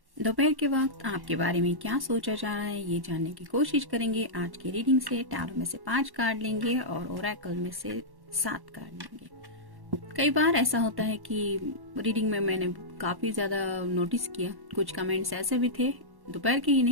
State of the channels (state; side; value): late; left; 1.1 ms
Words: दोपहर के वक्त आपके बारे में क्या सोचा जा रहा है ये जानने की कोशिश करेंगे आज की रीडिंग से। टैरो में से 5 कार्ड लेंगे और ओरेकल में से 7 कार्ड लेंगे। कई बार ऐसा होता है कि रीडिंग में मैंने काफ़ी ज़्यादा नोटिस किया, कुछ कमेंट्स ऐसे भी थे, दोपहर के ही